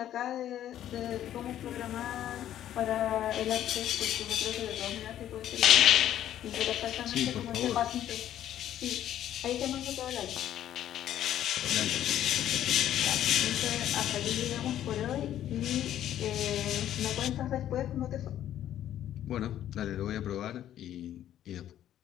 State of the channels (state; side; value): quieter; right; 11.6 dB